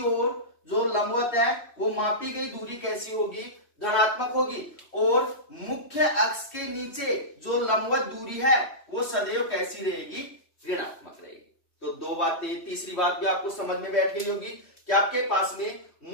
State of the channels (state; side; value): late; right; 3.1 ms